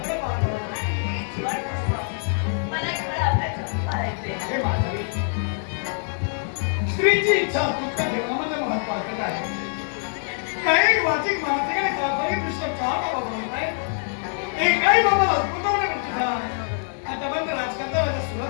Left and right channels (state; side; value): silent; right; 62 dB below the other